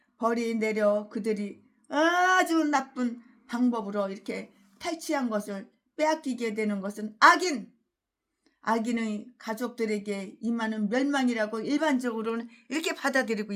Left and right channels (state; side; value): identical; both; correlation 1.00